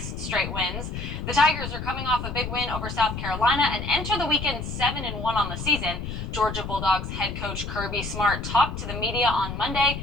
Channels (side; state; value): left; noise; rumble, 6 dB below the sound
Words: straight wins. The Tigers are coming off a big win over South Carolina and enter the weekend 7-1 on the season. Georgia Bulldogs head coach Kirby Smart talked to the media on Monday